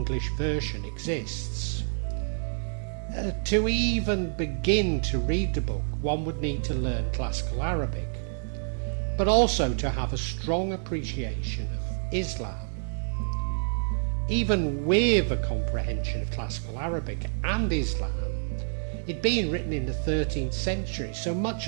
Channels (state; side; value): silent; left; digital silence